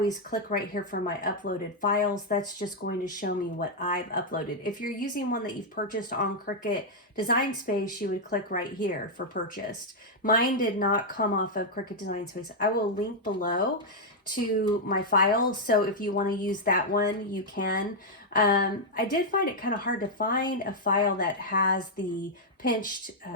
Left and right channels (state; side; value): normal; both; correlation -0.02